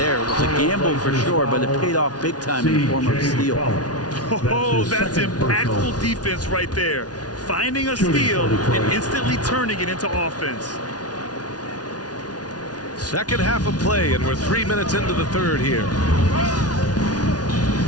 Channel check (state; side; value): late; right; 0.69 ms